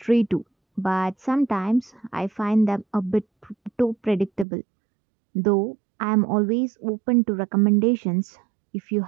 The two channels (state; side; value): drops out; left; at 4.5 s